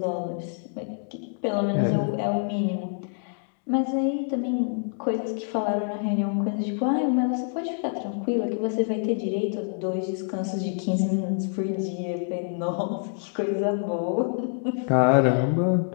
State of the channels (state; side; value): silent; right; digital silence